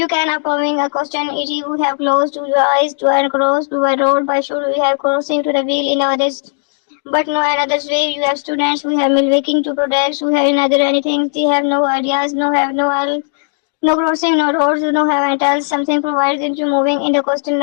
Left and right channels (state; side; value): silent; right; digital silence